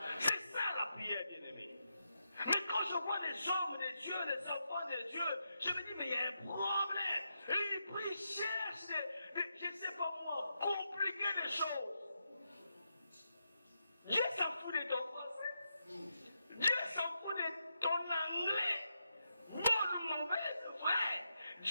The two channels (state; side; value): inverted; both; correlation -0.84